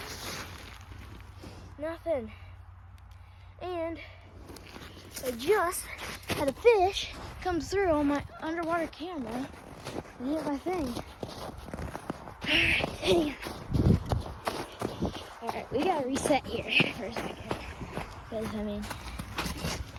Nothing. And I just had a fish come through on my underwater camera and hit my thing. Alright, we gotta reset here for a second. Because, I mean,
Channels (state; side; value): identical; both; correlation 1.00